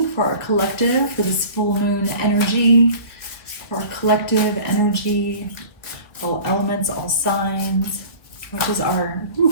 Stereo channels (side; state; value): right; late; 2.2 ms